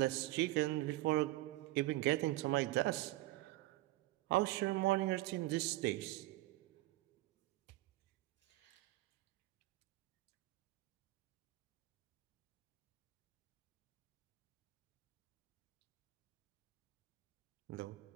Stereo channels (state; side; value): quieter; left; 18.3 dB